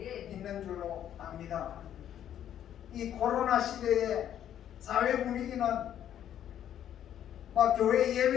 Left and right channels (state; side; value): quieter; right; 10.5 dB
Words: 있는 줄로 압니다. 이 코로나 시대의 사회 분위기는 막 교회